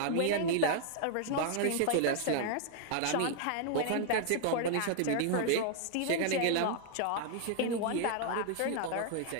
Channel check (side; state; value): both; different; correlation 0.00